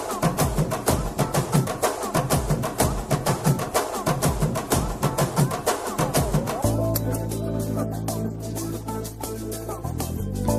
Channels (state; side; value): identical; both; correlation 1.00